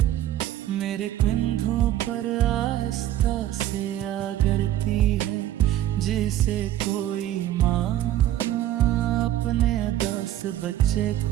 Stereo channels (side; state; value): left; quieter; 12.8 dB